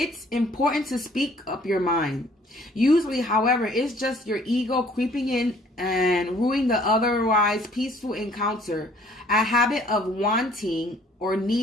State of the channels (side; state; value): both; normal; correlation 0.58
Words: important to speak up your mind. Usually, however, it's just your ego creeping in and ruining the otherwise peaceful encounter, a habit of wanting or